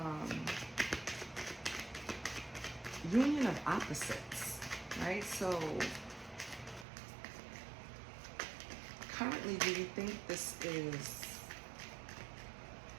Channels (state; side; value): drops out; left; at 6.9 s